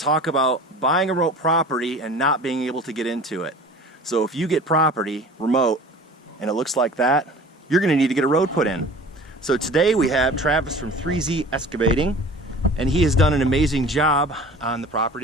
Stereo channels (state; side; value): normal; both; correlation 0.42